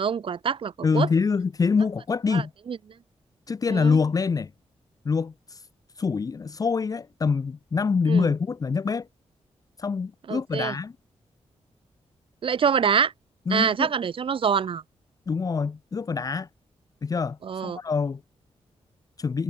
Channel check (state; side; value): normal; both; correlation 0.58